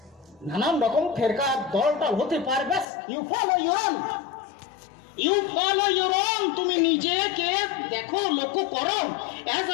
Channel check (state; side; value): drops out; right; at 2.9 s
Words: নানান রকম ফেরকা দলটাল হতে পারে, ব্যাস ইউ ফলো ইউর ওন, তুমি নিজেকে দেখো, লক্ষ্য করো। As